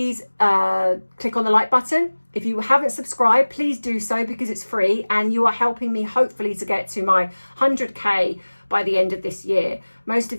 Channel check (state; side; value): inverted; both; correlation -1.00